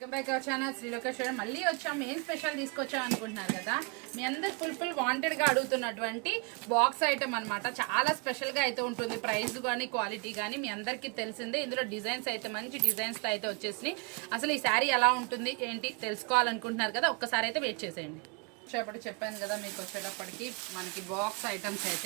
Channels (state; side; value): quieter; left; 32.6 dB